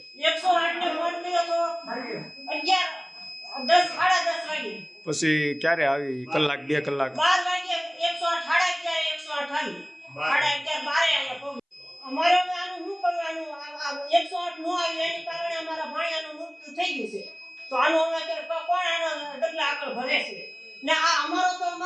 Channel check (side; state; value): both; identical; correlation 1.00